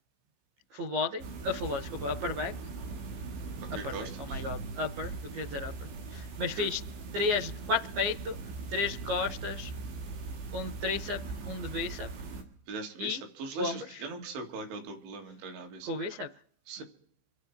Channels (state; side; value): late; left; 15 ms